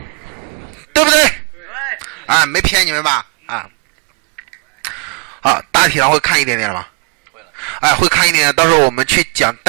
对不对？对。啊，没骗你们吧？啊。好，大体上会看一点点了吗？会了。哎，会看一点点，到时候我们去讲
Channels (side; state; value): left; quieter; 34.3 dB